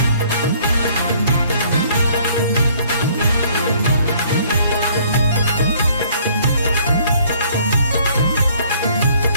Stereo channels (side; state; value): both; inverted; correlation -0.60